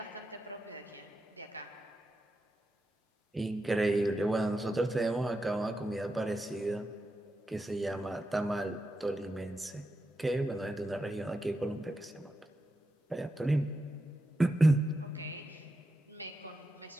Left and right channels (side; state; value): both; normal; correlation 0.88